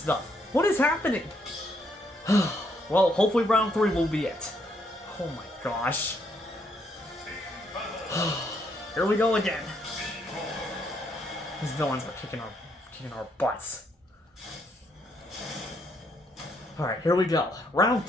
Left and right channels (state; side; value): normal; both; correlation 0.73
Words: What is happening? Well, hopefully round 3 will be it. Oh my gosh. Here we go again. These villains are kicking our butts. Alright, here we go. Round